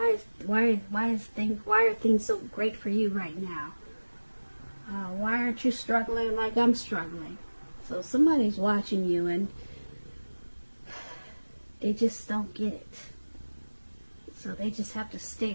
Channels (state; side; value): inverted; both; correlation -1.00